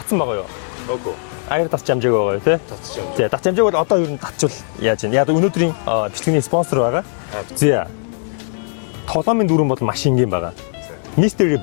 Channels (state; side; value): silent; right; digital silence